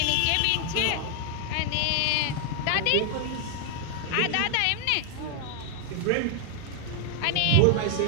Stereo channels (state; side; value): different; both; correlation 0.00